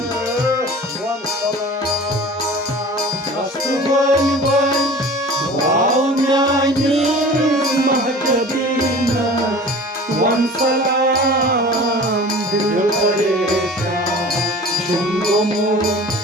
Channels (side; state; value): both; normal; correlation 0.42